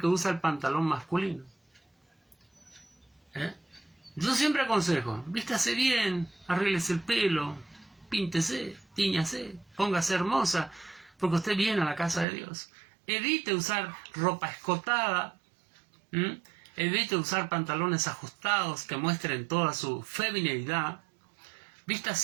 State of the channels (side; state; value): left; drops out; at 12.2 s